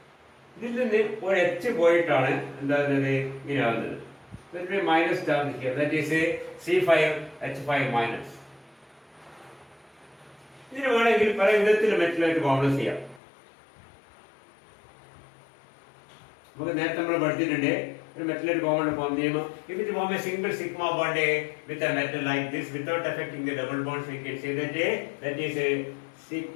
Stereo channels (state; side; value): drops out; right; at 13.2 s